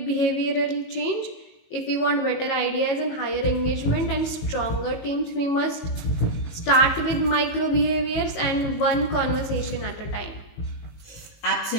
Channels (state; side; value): late; right; 19 ms